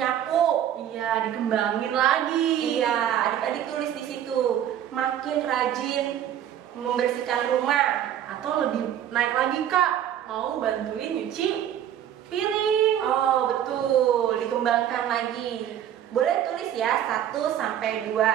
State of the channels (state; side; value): quieter; left; 10.5 dB